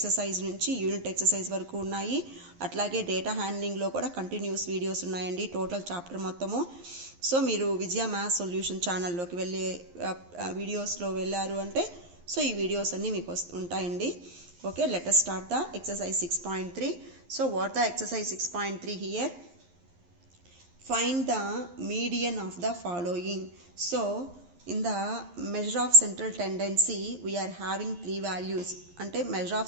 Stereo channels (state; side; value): late; left; 11 ms